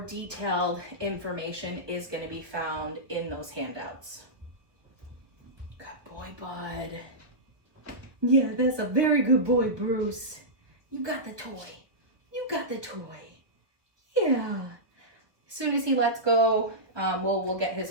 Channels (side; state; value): left; late; 1.1 ms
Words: information is going to be found in those handouts. Good boy, bud. Yeah, that's a very good boy, Bruce. You got the toy. You got the toy. Yeah. As soon as he lets go, we'll get